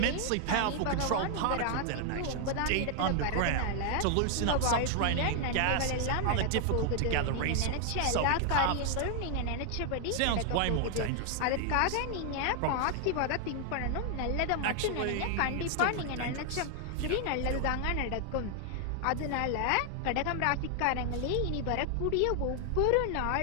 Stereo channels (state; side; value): different; both; correlation 0.00